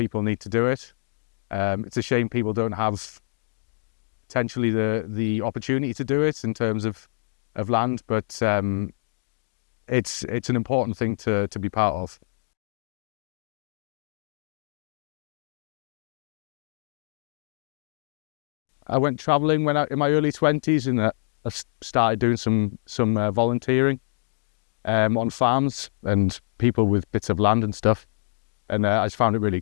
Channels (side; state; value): right; silent; digital silence